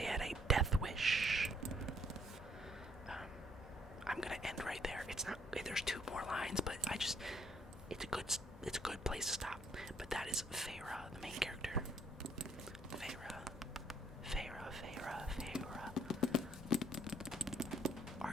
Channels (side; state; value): both; normal; correlation 0.66